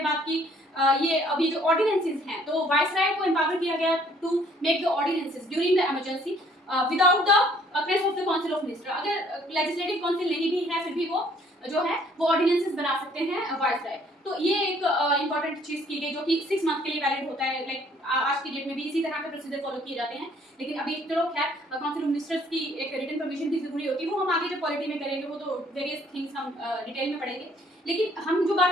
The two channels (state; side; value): normal; both; correlation 0.61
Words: बात की ये अभी जो ऑर्डिनेंसेस हैं, तो वाइसराय को एम्पावर किया गया to make the ordinances during the emergency without the press of the council of minister. अगर लेजिस्लेटिव काउंसिल नहीं भी है फिर भी वो जो है वो ऑर्डिनेंसेस बना सकते हैं वाइसराय। तो ये एक इंपॉर्टेंट चीज की गई जो कि 6 मंथ के लिए वैलिड होता है। लाइक आज की डेट में भी इसी तरह के प्रोसीजर फॉलो किए जाते हैं, लेकिन अभी चलो खैर काउंसिल ऑफ मिनिस्टर्स की एक रिटन परमिशन भी जरूरी होती है, वो हम आगे जब पॉलिटी में करेंगे वो तो वेरियस थिंग्स हम डिटेल में पढ़ेंगे। लेकिन हम जो